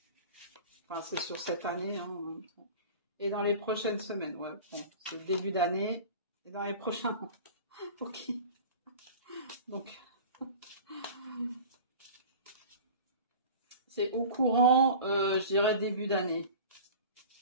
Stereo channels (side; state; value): both; inverted; correlation -0.38